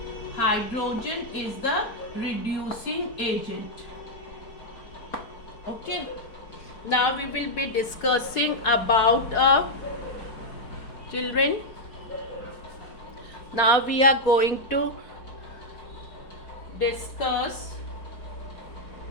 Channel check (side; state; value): right; late; 4.4 ms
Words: hydrogen is the reducing agent. Okay, now we will be discussing about children. Now we are going to discuss